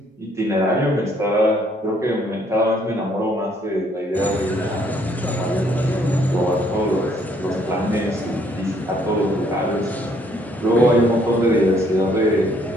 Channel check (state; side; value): normal; both; correlation 0.66